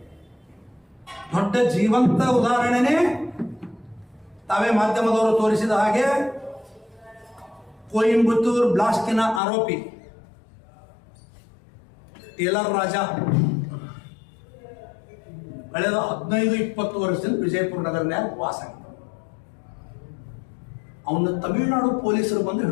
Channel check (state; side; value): drops out; right; at 9.4 s